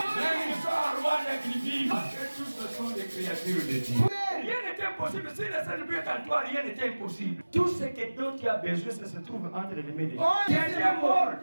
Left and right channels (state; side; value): inverted; both; correlation -1.00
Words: qui sont en Rwanda qu'ils vivent, parce que tous ce sont des créatures de Dieu. Rien n'est impossible. Si le Seigneur est en toi, rien n'est impossible. Tout ce dont tu as besoin, ça se trouve entre les mains de Dieu. Dieu est mort,